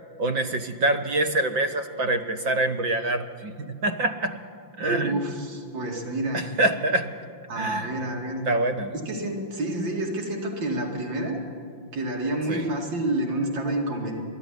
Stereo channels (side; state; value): left; late; 5.8 ms